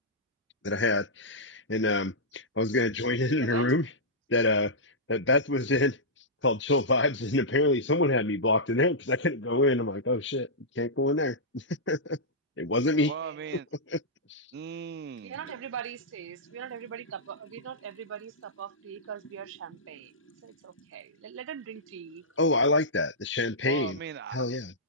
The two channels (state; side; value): normal; both; correlation -0.10